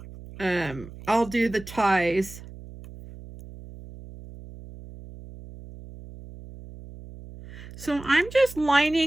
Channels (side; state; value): right; noise; hum, 16 dB below the sound